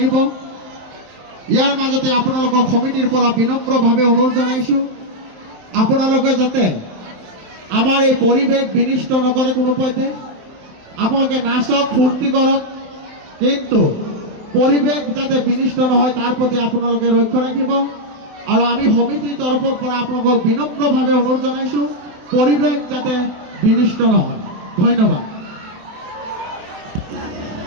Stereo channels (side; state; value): left; late; 27 ms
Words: ইয়াৰ মাজতে আপোনালোকৰ সমিতিৰ পৰা বিনম্ৰভাৱে অনুৰোধ জনাইছোঁ আপোনালোকে যাতে আমাৰ এই পৰিৱেশ বিনিষ্ট নকৰে কোনো পধ্যে। আপোনালোকে নাচক ফূৰ্তি কৰক, কিন্তু পৰিৱেশ যাতে বিনিষ্ট নহয় তাৰ প্ৰতি আপোনালোকে লক্ষ্য ৰাখিব। আৰু আমি সমিতিৰ তৰফৰ পৰা আপোনালোকক বিনম্ৰভাৱে অনুৰোধ জনাইছোঁ পৰিৱেশ যাতে বিনিষ্ট নহয়। ধন্যবাদ।